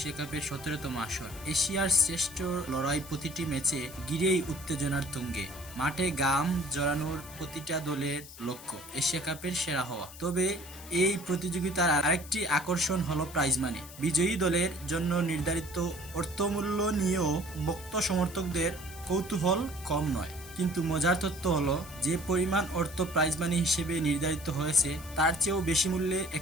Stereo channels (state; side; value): noise; left; hiss, 16 dB below the sound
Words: কাপের 17তম আসর। এশিয়ার শ্রেষ্ঠ লড়াই প্রতিটি ম্যাচে ঘিরেই উত্তেজনার তুঙ্গে। মাঠে গাম জড়ানোর প্রতিটা দলের লক্ষ্য এশিয়া কাপের সেরা হওয়া। তবে এই প্রতিযোগিতার আরেকটি আকর্ষণ হলো প্রাইজ মানি। বিজয়ী দলের জন্য নির্ধারিত অর্থমূল্য নিয়েও ভক্ত সমর্থকদের কৌতূহল কম নয়। কিন্তু মজার তথ্য হলো, যে পরিমাণ অর্থ প্রাইজ মানি হিসেবে নির্ধারিত হয়েছে তার চেয়েও বেশি মূল্যে